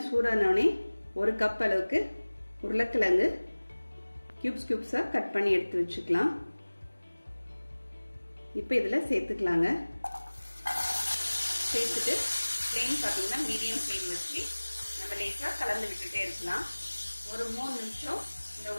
சூடானோடனே 1 கப் அளவுக்கு உருளைக்கிழங்கு கியூப்ஸா கட் பண்ணி எடுத்து வச்சுக்கலாம். இப்போ இதில் சேர்த்துக்கலாங்க. சேர்த்துட்டு ஃப்ளேம் பார்த்தீங்கன்னா மீடியம் ஃப்ளேம் வச்சு நம்ம லேசாக கலந்து விட்டுட்டே இருக்கலாம். ஒரு 3 நிமிஷம் இந்த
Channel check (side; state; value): both; inverted; correlation -1.00